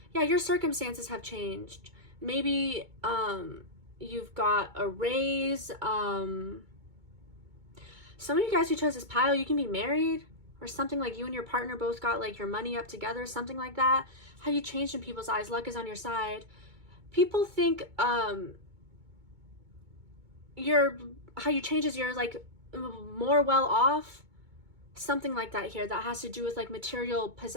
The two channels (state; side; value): late; left; 2.2 ms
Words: Yeah, your circumstances have changed. Maybe you've got a raise. Some of you guys who chose this pile, you can be married or something, like you and your partner both got like your money up together, something like that. How you changed in people's eyes. Luck is on your side. People think how you change is you're like more well off, something like that here. That has to do with like material